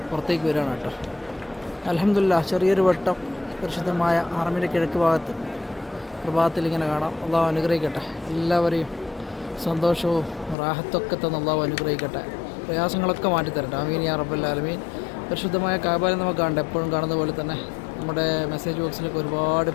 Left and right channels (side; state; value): right; drops out; at 10.6 s